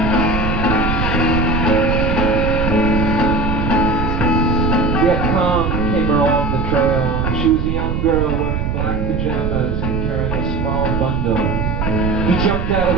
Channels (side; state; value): right; noise; rumble, 1 dB below the sound